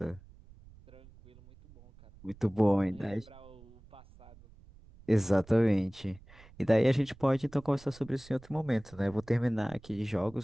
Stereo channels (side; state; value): right; noise; rumble, 23 dB below the sound